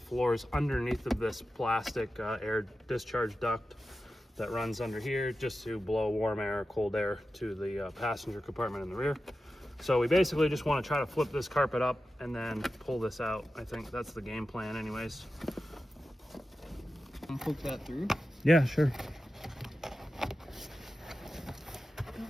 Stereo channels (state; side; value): normal; both; correlation 0.92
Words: underneath of this plastic air discharge duct that runs under here just to blow warm air or cold air to the passenger compartment in the rear. So we basically just want to try to flip this carpet up and then pull this out. I think that's the game plan anyways. And poke that through? Yeah, sure.